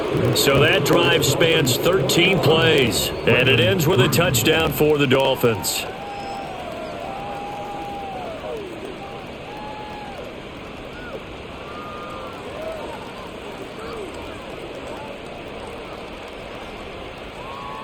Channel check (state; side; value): identical; both; correlation 1.00